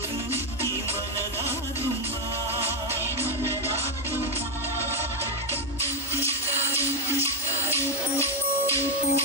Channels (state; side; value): normal; both; correlation 0.06